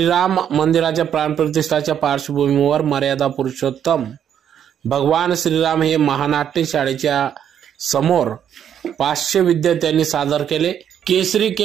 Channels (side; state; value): left; quieter; 9.2 dB